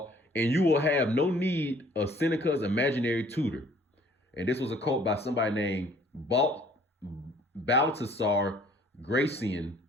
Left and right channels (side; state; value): both; normal; correlation 0.56